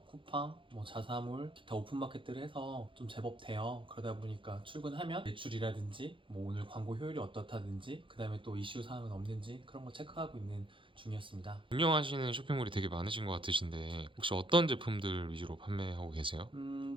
쿠팡, 뭐 자사몰, 기타 오픈마켓들을 해서 좀 제법 돼요. 그러다 보니까 출근하면 매출이라든지 뭐 오늘 광고 효율이 어떻다든지 그 다음에 또 이슈 사항은 없는지 그런 거 체크하고 있는 중이었습니다. 운영하시는 쇼핑몰이 되게 많으신 것 같으신데 혹시 어떤 제품들 위주로 판매하고 계세요?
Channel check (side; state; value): left; late; 0.25 ms